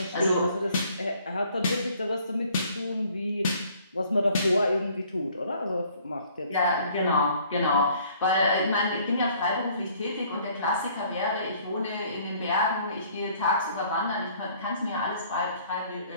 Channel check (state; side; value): inverted; both; correlation -0.59